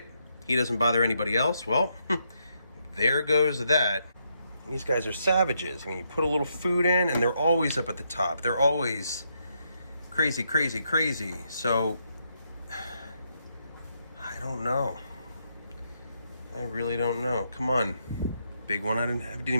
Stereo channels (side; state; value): both; inverted; correlation -0.78